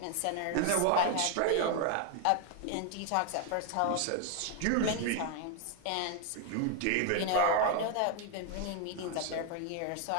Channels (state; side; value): different; both; correlation 0.00